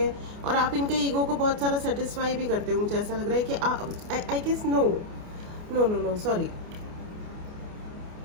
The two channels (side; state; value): left; late; 28 ms